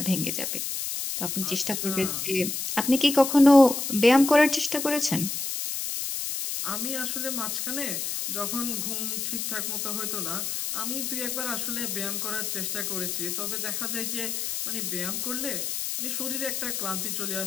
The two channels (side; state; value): left; noise; hiss, 3 dB below the sound